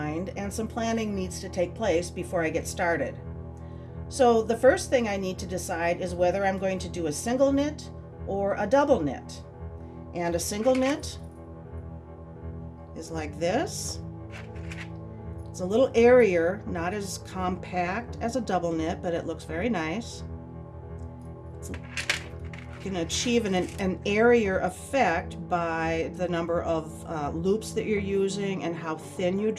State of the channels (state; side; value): identical; both; correlation 1.00